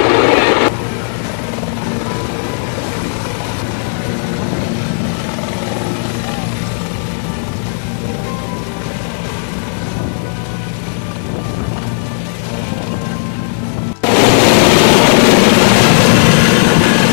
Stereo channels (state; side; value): silent; right; digital silence